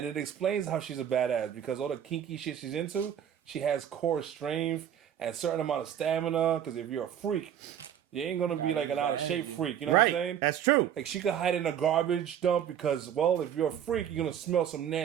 it explains how she's a badass because all the kinky shit she's into, she has core strength and a certain amount of stamina. Because if you're a freak, you ain't gonna be like an out of shape freak. You know what I'm Right. saying? That's true. Like she could hide in a garbage dump because, well, if you're a freak, you're gonna smell some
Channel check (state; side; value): quieter; left; 9.6 dB